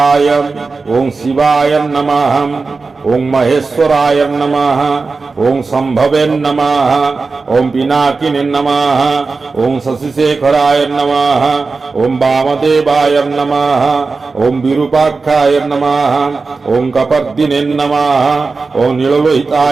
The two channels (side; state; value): left; quieter; 4.2 dB